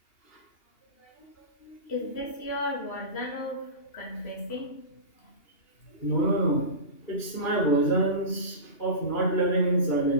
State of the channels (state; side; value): late; right; 2.8 ms